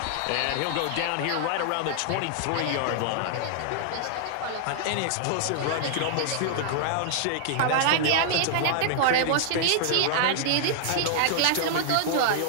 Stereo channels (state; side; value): different; both; correlation -0.01